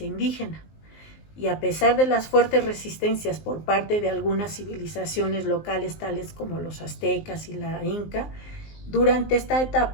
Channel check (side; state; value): right; late; 19 ms